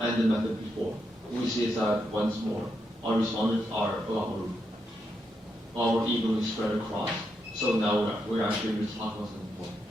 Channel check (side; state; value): both; normal; correlation 0.82